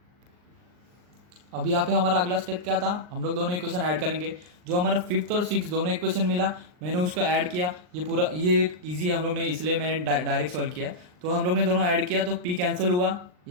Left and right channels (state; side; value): late; left; 39 ms